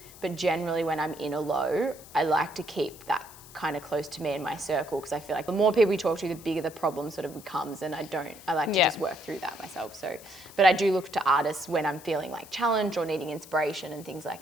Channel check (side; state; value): left; noise; hiss, 19 dB below the sound